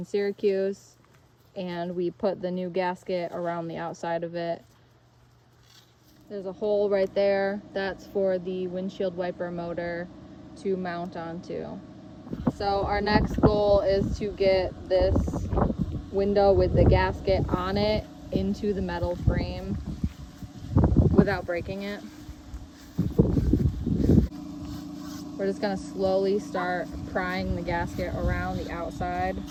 Syracuse, and we put the new gasket around the outside of it. There's a hole right there. That's for the windshield wiper motor to mount onto. So our next goal is to get this window with the gasket on it into the metal frame without breaking it. We're just gonna slowly start prying the gasket around the outside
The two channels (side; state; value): both; identical; correlation 1.00